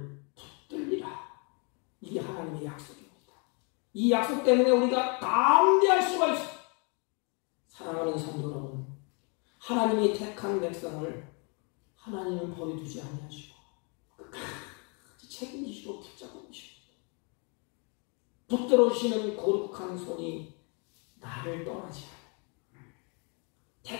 붙들리라. 이게 하나님의 약속입니다. 이 약속 때문에 우리가 담대할 수가 있습니다. 사랑하는 성도 여러분, 하나님이 택한 백성을 하나님은 버려두지 아니하시고 끝까지 책임지시고 붙잡고 계십니다. 붙들어주시는 거룩한 손이 나를 떠나지 않아요.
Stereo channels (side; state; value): right; quieter; 34.9 dB